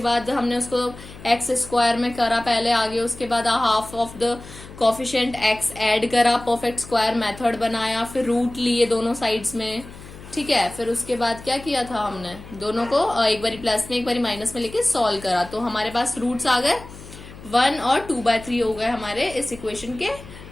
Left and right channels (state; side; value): noise; left; hum, 17 dB below the sound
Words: हमने उसको एक्स स्क्वायर में करा पहले आगे, उसके बाद half of the coefficient x add करा, परफेक्ट स्क्वायर मेथड बनाया, फिर रूट लिए दोनों साइड्स में, ठीक है, फिर उसके बाद क्या किया था हमने, दोनों को एक बारी प्लस में एक बारी माइनस में लेके सॉल्व करा, तो हमारे पास रूट्स आ गए 1 और 2/3 हो गए हमारे इस इक्वेशन के